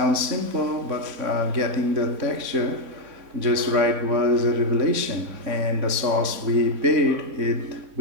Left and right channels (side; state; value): left; late; 3.6 ms